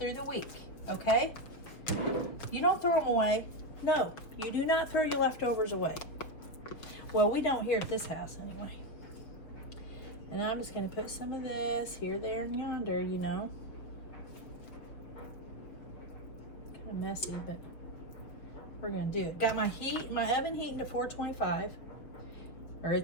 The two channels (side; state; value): right; late; 6.0 ms